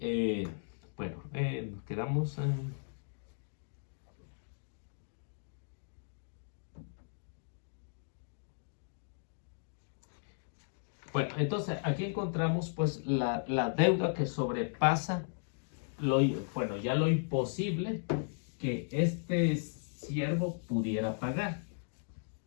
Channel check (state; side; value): silent; right; digital silence